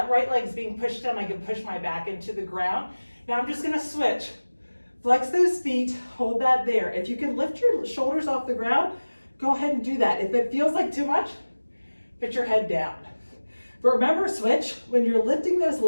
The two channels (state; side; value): inverted; both; correlation -1.00